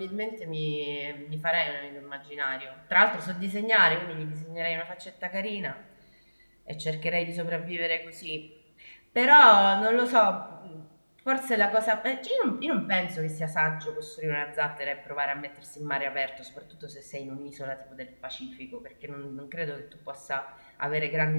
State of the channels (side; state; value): both; inverted; correlation -1.00